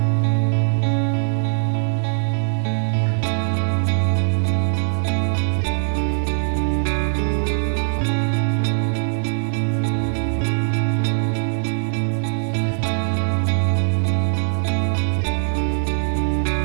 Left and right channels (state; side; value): silent; left; 59 dB below the other